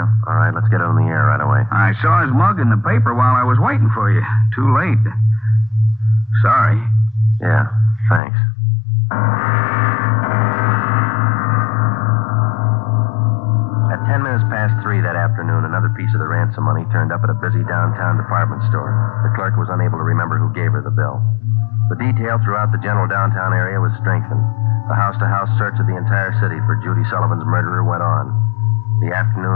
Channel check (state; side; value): drops out; right; at 8.2 s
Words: All right, let's get it on the air right away. I saw his mug in the paper while I was waiting for you. Too late. Sorry. Yeah, thanks. At 10 minutes past 3 that afternoon, another piece of the ransom money turned up at a busy downtown department store. The clerk was unable to remember who gave her the bill. The detail throughout the general downtown area was strengthened. The house-to-house search of the entire city for Judy Sullivan's murderer went on. The